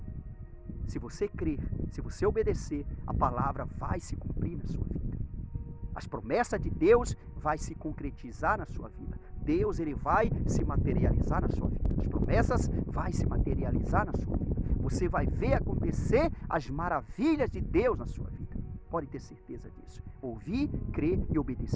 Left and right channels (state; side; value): identical; both; correlation 1.00